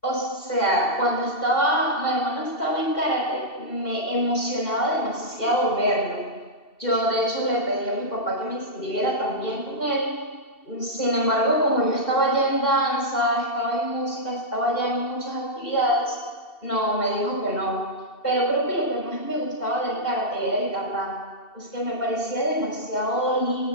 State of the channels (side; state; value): right; late; 2.7 ms